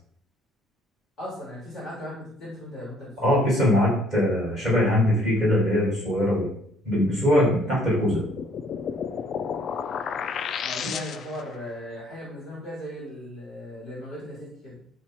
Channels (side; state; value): both; normal; correlation 0.62